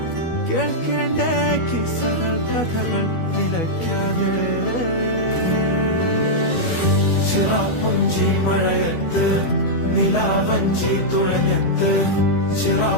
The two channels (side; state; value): right; late; 12 ms